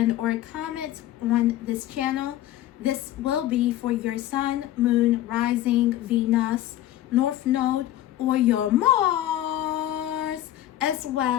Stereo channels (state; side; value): quieter; right; 13.5 dB